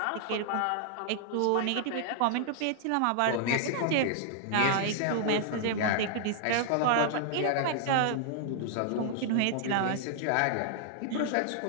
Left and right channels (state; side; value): different; both; correlation -0.01